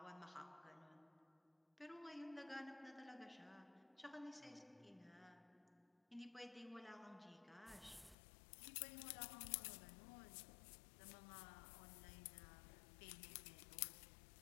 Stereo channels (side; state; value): right; drops out; at 8.2 s